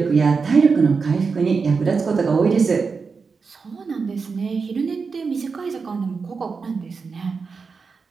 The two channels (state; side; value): quieter; left; 5.0 dB